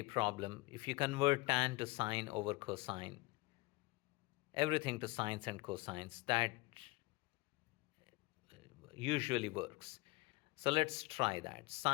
problem, if you convert tan to sine over cosine, everything to sines and cosines, that usually works. So let's try that.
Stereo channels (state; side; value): quieter; right; 22.8 dB